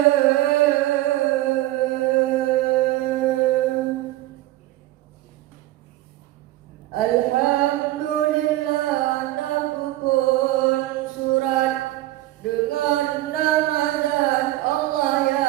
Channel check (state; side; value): quieter; left; 16.4 dB